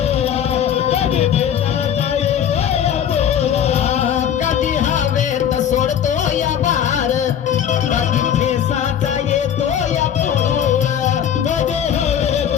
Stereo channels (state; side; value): quieter; right; 9.2 dB